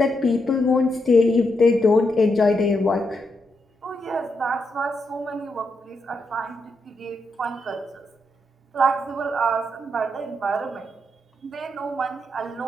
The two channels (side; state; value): both; normal; correlation 0.82